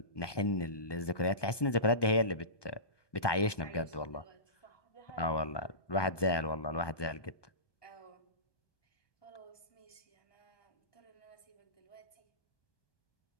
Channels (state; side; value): late; right; 1.2 ms